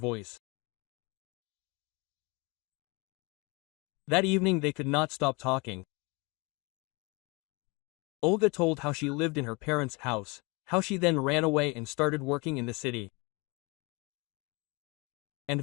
That evening they could not stop talking. Olga told how she lived in her parents' house, how she then ran away and started working in the city. And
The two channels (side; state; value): right; quieter; 28.1 dB